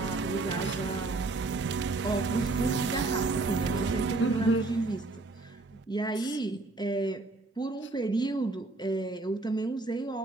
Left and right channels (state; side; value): quieter; left; 3.2 dB